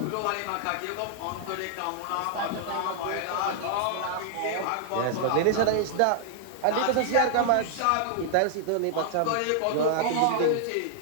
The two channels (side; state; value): both; different; correlation -0.01